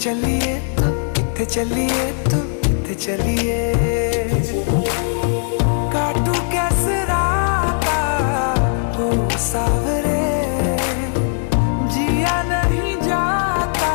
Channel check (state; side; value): silent; right; digital silence